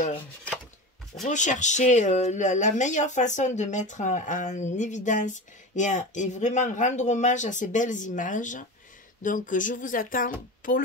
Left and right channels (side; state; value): both; normal; correlation 0.28